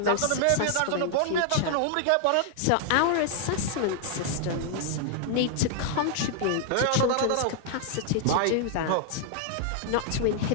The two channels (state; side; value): different; both; correlation 0.00